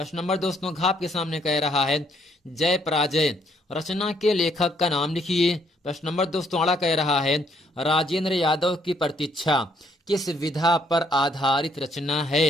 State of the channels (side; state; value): both; normal; correlation 0.68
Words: नंबर दोस्तों घ आपके सामने कह रहा है, जय पराजय रचना के लेखक का नाम लिखिए। प्रश्न नंबर दोस्तों अड़ा कह रहा है, राजेंद्र यादव की प्रतीक्षा किस विधा पर आधारित रचना